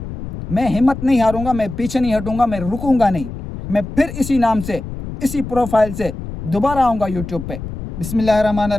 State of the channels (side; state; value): left; noise; rumble, 9 dB below the sound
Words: मैं हिम्मत नहीं हारूंगा, मैं पीछे नहीं हटूंगा, मैं रुकूंगा नहीं। मैं फिर इसी नाम से, इसी प्रोफाइल से दोबारा आऊँगा यूट्यूब पे।